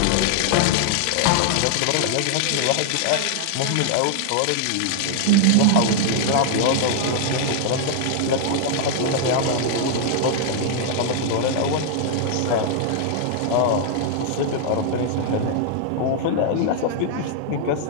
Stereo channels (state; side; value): different; both; correlation 0.00